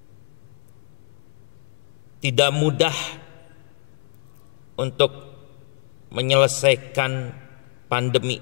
Tidak mudah untuk menyelesaikan pandemi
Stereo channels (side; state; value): right; silent; digital silence